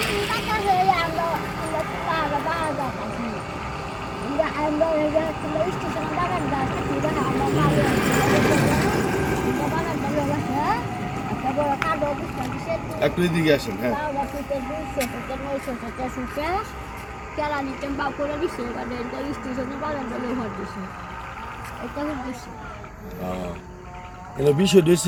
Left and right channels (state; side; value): identical; both; correlation 1.00